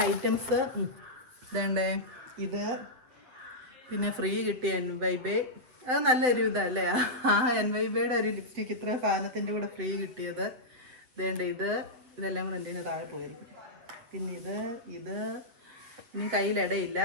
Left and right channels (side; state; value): left; late; 8.1 ms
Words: ഐറ്റംസ്. ഇതേണ്ടേ, ഇത് പിന്നെ ഫ്രീ കിട്ടിയ NYB, അത് നല്ലൊരു ഇതല്ലേ. NYBയുടെ ഒരു ലിപ്സ്റ്റിക്ക് ഇത്ര സാധനത്തിൻ്റെ കൂടെ ഫ്രീ കിട്ടിയത്. ഇതേണ്ട, ഇതെല്ലാം കൂടെ എൻ്റെ താഴെ പോയിരിക്കും. പിന്നെ ഇത് ഇനി കയ്യിലിടയില്ല.